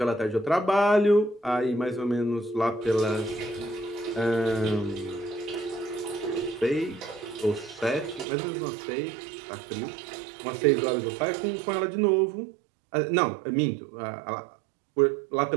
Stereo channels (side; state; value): left; drops out; at 8.2 s